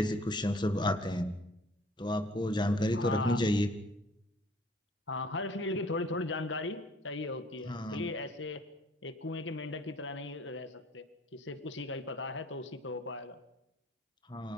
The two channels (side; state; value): both; normal; correlation 0.56